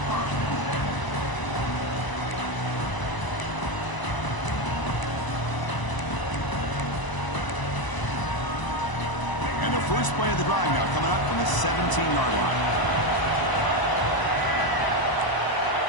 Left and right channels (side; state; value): right; late; 1.0 ms